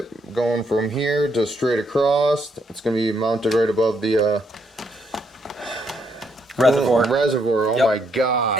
going from here to straight across. It's going to be mounted right above the reservoir. Oh my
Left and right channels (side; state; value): both; normal; correlation 0.74